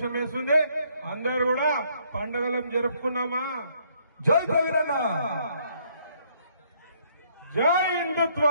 వేస్తుంది. అందరు కూడా పండుగలను జరుపుకున్నామా? జై కవిరన్న, జై హిందుత్వ,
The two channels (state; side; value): inverted; both; correlation -0.68